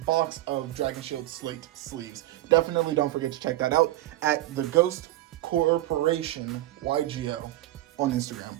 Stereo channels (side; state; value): left; quieter; 15.9 dB